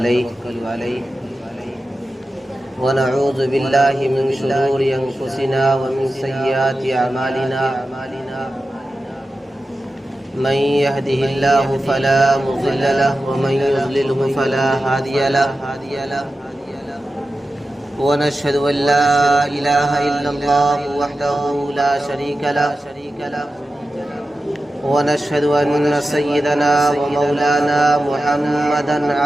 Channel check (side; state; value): both; normal; correlation 0.93